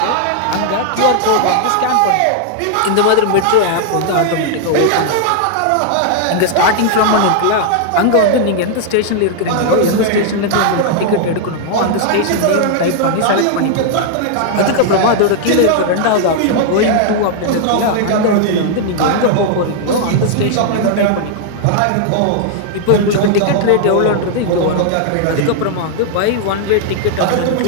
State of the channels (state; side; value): different; both; correlation -0.01